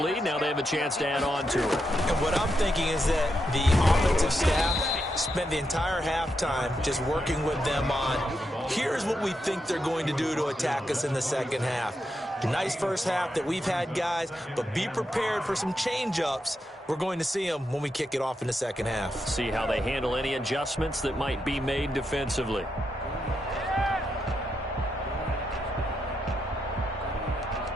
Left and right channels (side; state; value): both; normal; correlation 0.84